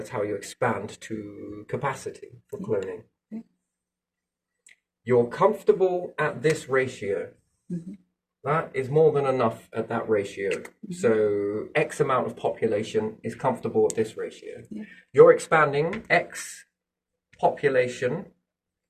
how you expand to capacity for cloning. You're comfortable at this ratio. That is more than enough at that ratio. So X amount of population is comfortable at this ratio. You're expanding X population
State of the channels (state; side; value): identical; both; correlation 1.00